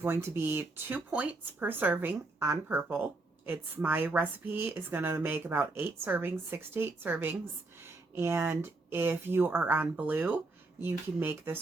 to be 2 points per serving on purple. My recipe is going to make about 8 servings, 6 to 8 servings. And if you are on blue, you can make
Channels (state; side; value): quieter; left; 3.2 dB